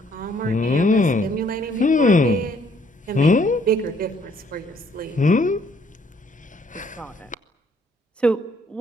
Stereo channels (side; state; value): both; normal; correlation 0.65